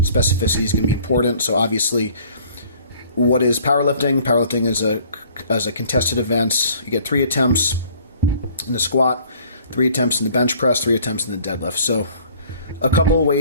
specificity is going to be important. So obviously, what is powerlifting? Powerlifting is a contested event. You get 3 attempts in the squat, 3 attempts in the bench press, 3 attempts in the deadlift. So a couple of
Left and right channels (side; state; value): both; inverted; correlation -0.55